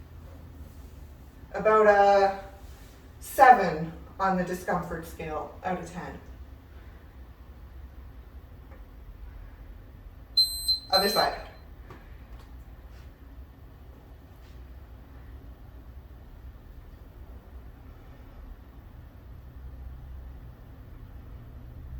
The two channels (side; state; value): both; identical; correlation 1.00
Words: About a 7 on the discomfort scale out of 10. Other side.